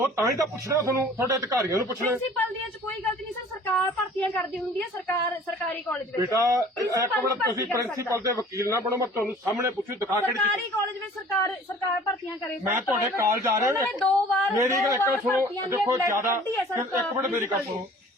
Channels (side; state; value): both; normal; correlation 0.49